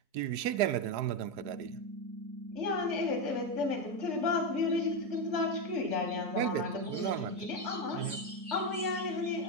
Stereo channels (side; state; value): left; late; 4.8 ms